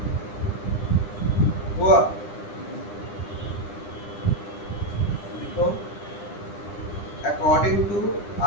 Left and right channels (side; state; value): right; late; 9.9 ms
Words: हुआ, देखो according to